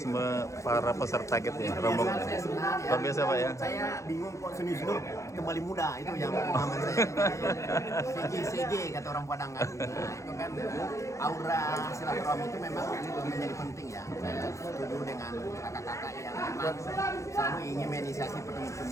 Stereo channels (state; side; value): late; right; 0.15 ms